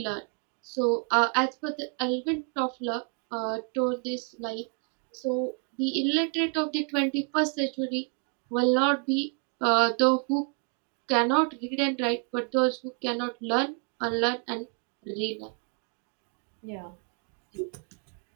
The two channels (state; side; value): quieter; left; 37.9 dB